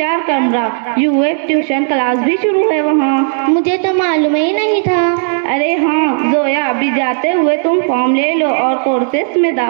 कमरा यूएफ ट्यूशन क्लास भी शुरू है वहाँ। मुझे तो मालूम ही नहीं था। अरे हाँ जोया, अभी जाते हुए तुम फॉर्म ले लो और कोर्सेस में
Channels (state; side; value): silent; left; digital silence